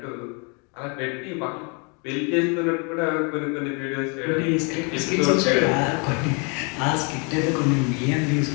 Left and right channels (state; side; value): quieter; right; 34.7 dB